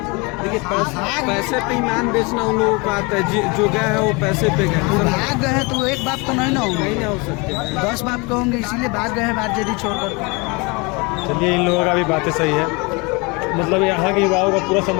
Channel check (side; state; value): right; quieter; 28.2 dB